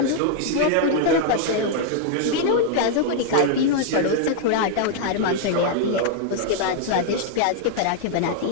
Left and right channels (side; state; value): both; different; correlation 0.00